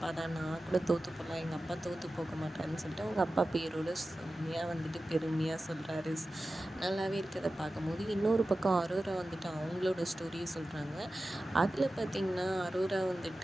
தான். நான் கூட தோற்று போகலாம், எங்கள் அப்பா தோற்று போக மாட்டாருன்னு சொல்லிட்டு அவங்க அப்பா பேரோட செம்மையாக வந்துட்டு பெருமையாக சொல்கிறாரு. நல்லாவே இருக்கிறத பார்க்கும்போது இன்னொரு பக்கம் அரோரா வந்துட்டு அவங்களோட ஸ்டோரியை சொல்கிறாங்க. அதில் பார்த்திங்கன்னா அரோரா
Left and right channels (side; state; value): both; normal; correlation 0.94